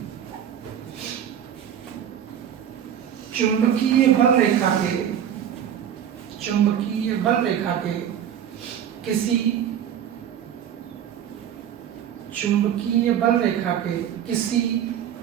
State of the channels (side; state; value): left; quieter; 9.5 dB